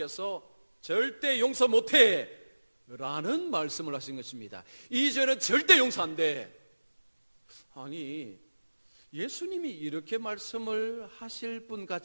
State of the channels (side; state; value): both; inverted; correlation -1.00